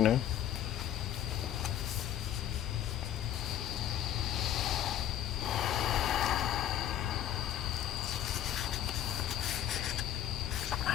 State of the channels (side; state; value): right; quieter; 11.1 dB